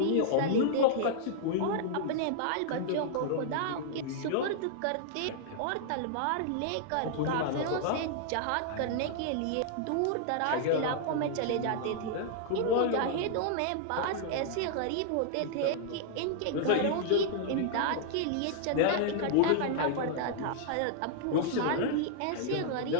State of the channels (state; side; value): different; both; correlation -0.01